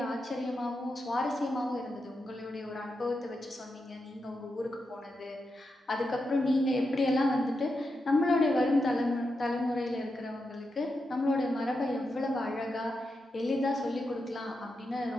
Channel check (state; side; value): normal; both; correlation 0.87